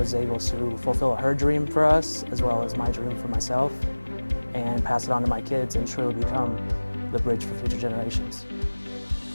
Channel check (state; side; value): inverted; both; correlation -1.00